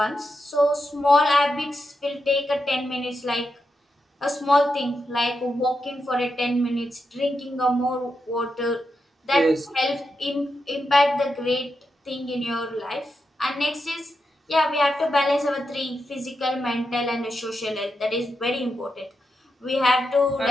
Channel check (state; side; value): normal; both; correlation 0.86